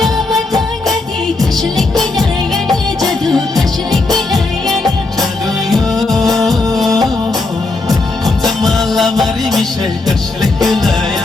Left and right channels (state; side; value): quieter; right; 3.4 dB